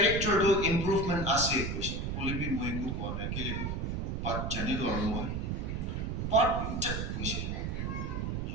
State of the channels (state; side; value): noise; right; rumble, 2 dB below the sound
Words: তো improvement আছে কইছে বলিবি মই কো কোৱা নাই কেলে পাট জানি লৰ মই পাট কইছে